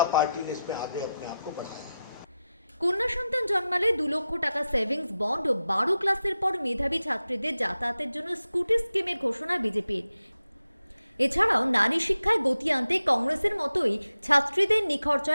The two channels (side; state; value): both; inverted; correlation -0.91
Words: पार्टी ने इसमें आगे अपने आप को बढ़ाया है। কন্যা সন্তান জন্মালে 2 লক্ষ টাকা সেভিংস বন্ড ও 12 ক্লাসের পর মেধাবী ছাত্রীদের যাতায়াতের জন্য স্কুটি স্কিমের ঘোষণা বিজেপির। এছাড়াও নারী শিক্ষায় গতি আনতে কংগ্রেসের মতোই ছাত্রীদের